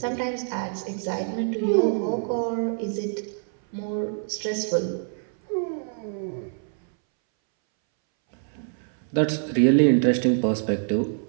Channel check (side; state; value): left; silent; 61 dB below the other